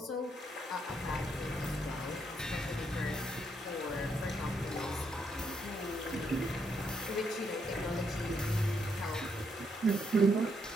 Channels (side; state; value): both; normal; correlation 0.76